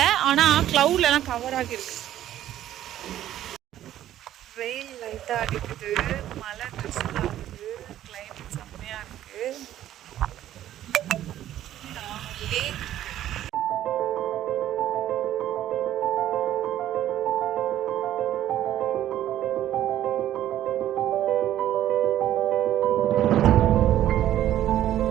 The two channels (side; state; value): left; quieter; 12.4 dB